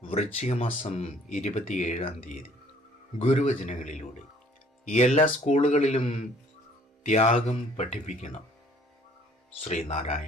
വൃശ്ചിക മാസം 27 ഗുരുവചനങ്ങളിലൂടെ എല്ലാ സ്കൂളുകളിലും ത്യാഗം പഠിപ്പിക്കണം.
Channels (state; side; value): normal; both; correlation 0.58